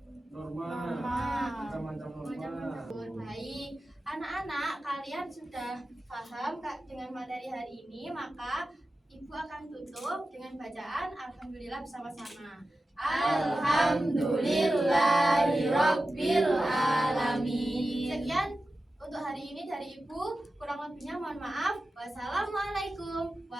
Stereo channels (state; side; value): normal; both; correlation 0.93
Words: Norma. Macam-macam norma. Baik, anak-anak kalian sudah paham dengan materi hari ini, maka Ibu akan tutup dengan bacaan Alhamdulillah bersama-sama. Alhamdulillahirabbil alamin. Sekian untuk hari ini dari Ibu, kurang lebihnya mohon maaf. Wassalamualaikum